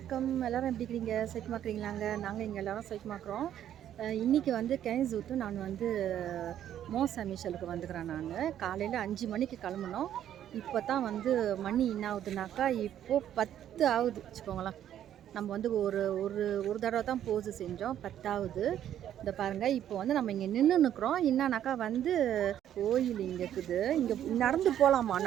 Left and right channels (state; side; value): quieter; left; 10.8 dB